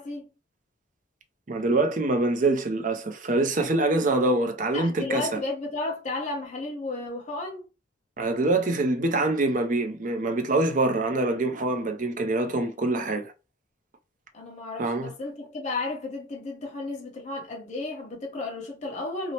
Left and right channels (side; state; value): both; normal; correlation 0.33